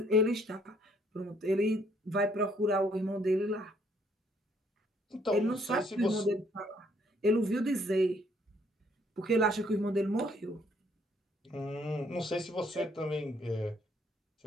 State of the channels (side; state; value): both; normal; correlation 0.66